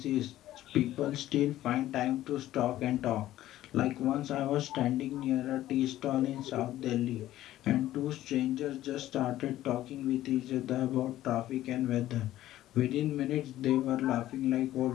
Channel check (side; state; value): right; quieter; 14.1 dB